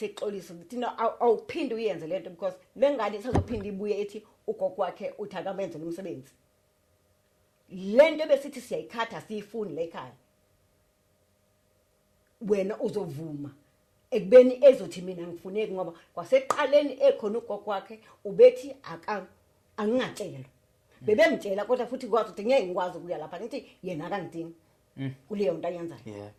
ukuthi no awuphinde uyenze lento because lengane isazophinda ibuye ethi ugogo wakhe uthi akamenze umsebenzi lento besithi siyayikhatha siyifuni la ekhaya wena uzovuma ekubeni ezothi mina ngifuneki ngoba kwaseqaleni ekhona ugogo wakhe ubethi angingatshelwa bebemtshela kodwa futhi kwazi ukuthi ngeke ngikwazi ukuya lapha ngithi yena akangidingi kuleyo nto ayenzayo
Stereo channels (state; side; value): identical; both; correlation 1.00